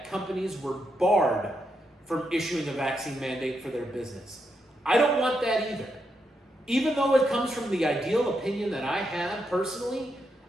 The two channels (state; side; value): normal; both; correlation 0.82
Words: companies were barred from issuing a vaccine mandate for their business. I don't want that either. Even though it comes from the ideal opinion that I have personally,